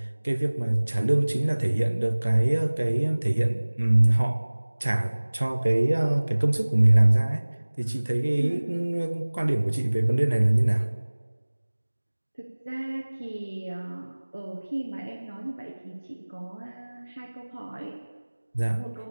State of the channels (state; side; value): inverted; both; correlation -1.00